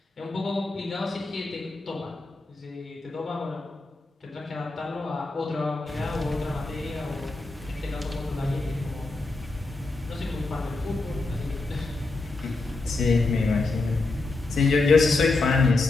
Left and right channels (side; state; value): right; quieter; 3.3 dB